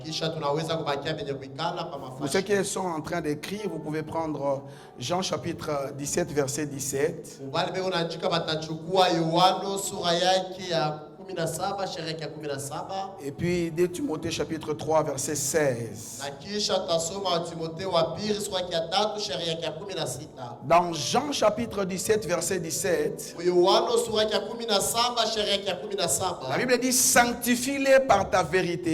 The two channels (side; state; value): both; identical; correlation 1.00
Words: Pour ceux qui sont en train d'écrire, vous pouvez prendre Jean chapitre 17, verset 17. Et puis 2 Timothée chapitre 3, verset 16. Dans Jean chapitre 17, verset 17, la Bible dit: sanctifie-les par ta